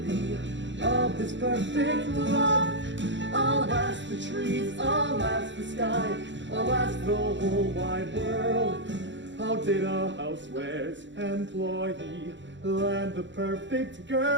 of this perfect love? I'll ask the trees, I'll ask the sky, I'll ask the whole wide world. How did a housewares employee land the perfect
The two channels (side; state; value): left; late; 0.54 ms